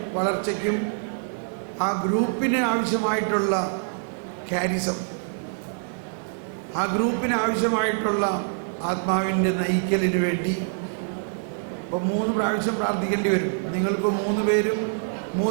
വളർച്ചയ്ക്കും ആ ഗ്രൂപ്പിന് ആവശ്യമായിട്ടുള്ള കാരിസം, ആ ഗ്രൂപ്പിന് ആവശ്യമായിട്ടുള്ള ആത്മാവിൻ്റെ നയിക്കലിന് വേണ്ടി ഇപ്പോൾ 3 പ്രാവശ്യം പ്രാർത്ഥിക്കേണ്ടി വരും. നിങ്ങളിപ്പോൾ 3 പേരും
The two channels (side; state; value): left; silent; 62 dB below the other